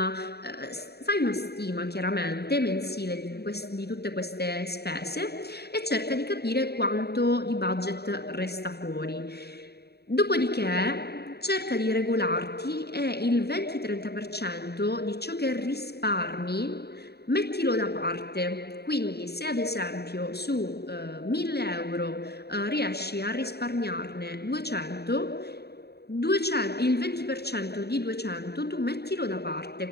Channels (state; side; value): late; right; 0.47 ms